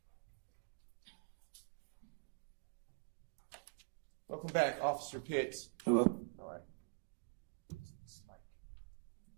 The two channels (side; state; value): left; quieter; 38.4 dB